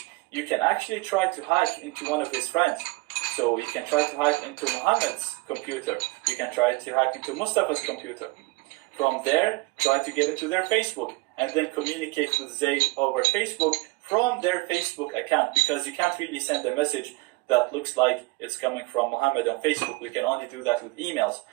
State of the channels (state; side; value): quieter; left; 24.1 dB